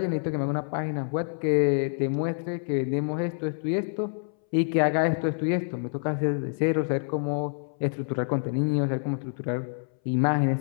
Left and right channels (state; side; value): silent; right; 60 dB below the other